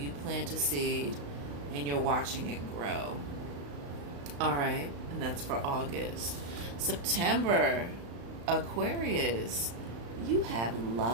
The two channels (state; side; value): late; left; 35 ms